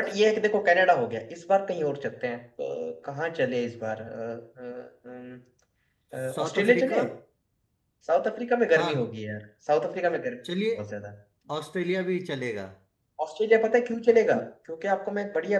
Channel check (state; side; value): identical; both; correlation 1.00